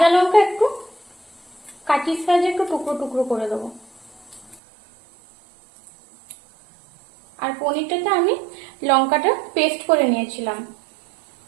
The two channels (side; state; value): left; drops out; at 4.6 s